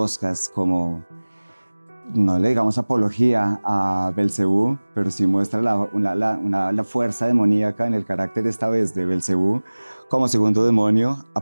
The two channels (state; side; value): inverted; both; correlation -1.00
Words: como no le digamos apología a Belcebú, pero sí muestra la fuerza demoníaca en el carácter esta vez de Belcebú como segundo demonio,